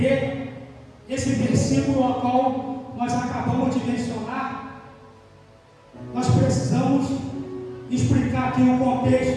esse versículo ao qual nós acabamos de mencionar, nós precisamos explicar aqui o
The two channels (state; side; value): identical; both; correlation 1.00